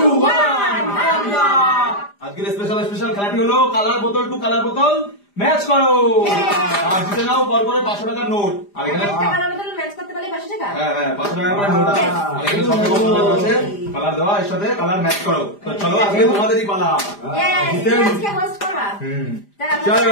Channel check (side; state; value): right; late; 5.0 ms